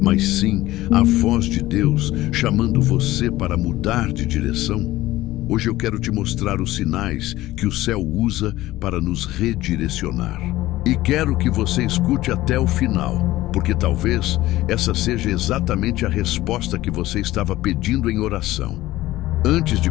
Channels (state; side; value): quieter; right; 16.6 dB